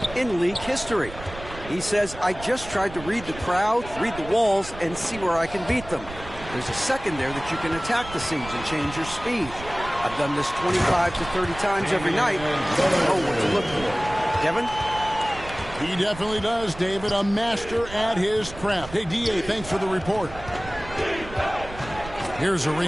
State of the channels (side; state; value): right; noise; rumble, 14 dB below the sound